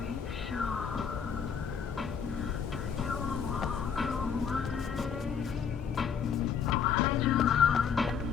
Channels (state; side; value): quieter; right; 7.0 dB